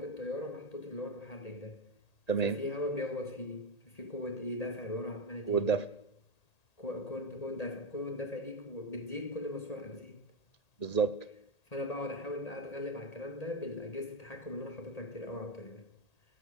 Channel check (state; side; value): late; right; 1.8 ms